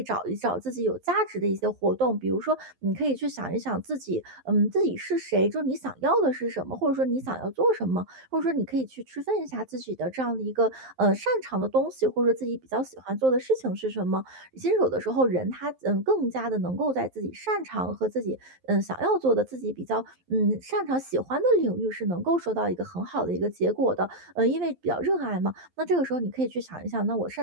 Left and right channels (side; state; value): left; late; 11 ms